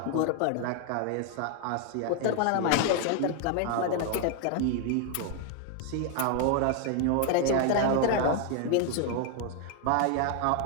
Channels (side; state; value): both; different; correlation 0.00